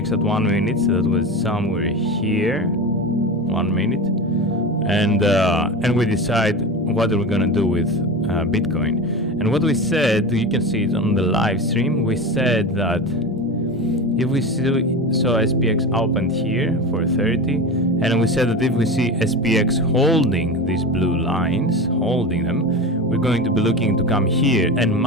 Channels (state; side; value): normal; both; correlation 0.26